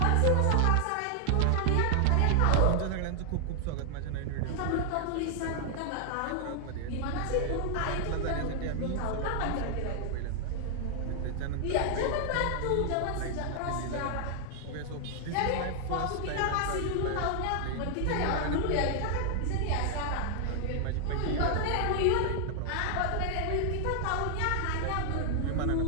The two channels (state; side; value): different; both; correlation 0.00